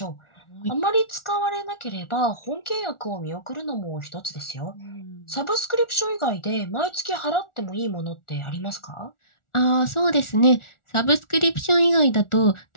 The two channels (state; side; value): late; right; 1.4 ms